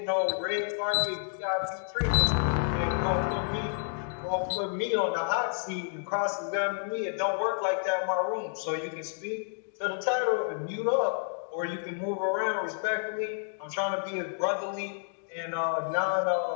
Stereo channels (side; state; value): right; silent; digital silence